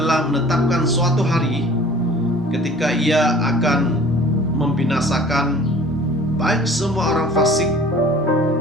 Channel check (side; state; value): both; normal; correlation 0.47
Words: menetapkan suatu hari ketika Ia akan membinasakan baik semua orang fasik